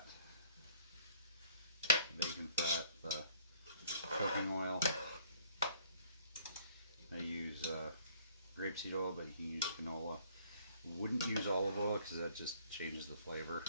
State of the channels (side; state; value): both; inverted; correlation -0.58